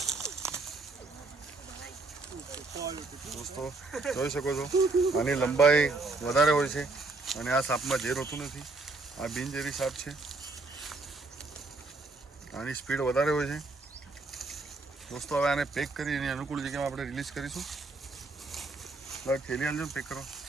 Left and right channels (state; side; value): quieter; left; 3.4 dB